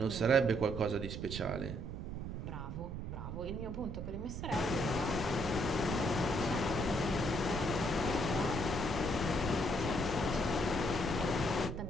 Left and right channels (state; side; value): noise; right; rumble, 6 dB below the sound